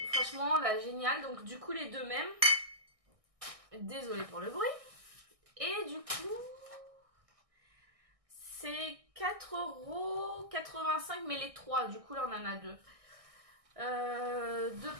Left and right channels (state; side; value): late; left; 1.6 ms